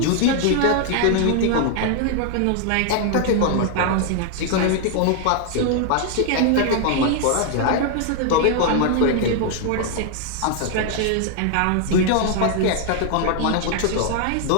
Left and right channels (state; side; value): different; both; correlation 0.00